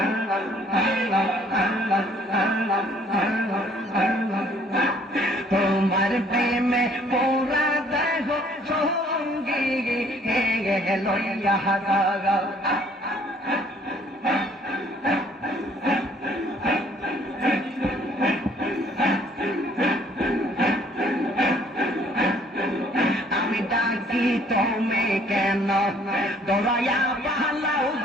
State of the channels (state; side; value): normal; both; correlation 0.60